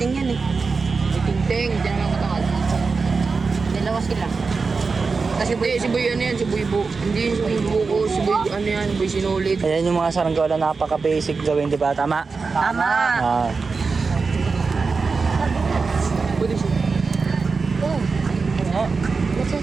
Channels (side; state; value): left; quieter; 4.5 dB